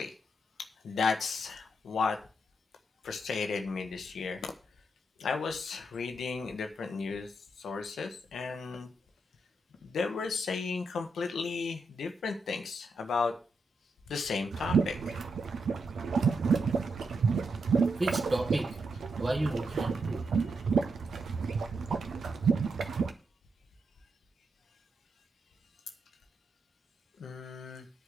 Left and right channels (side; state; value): both; normal; correlation 0.82